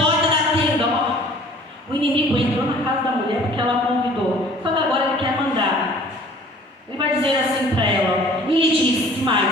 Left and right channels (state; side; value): normal; both; correlation 0.51